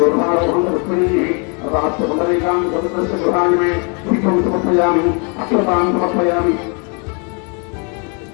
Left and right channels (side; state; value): right; quieter; 35.7 dB